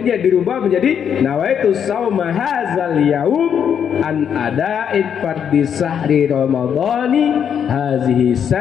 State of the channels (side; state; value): right; quieter; 8.1 dB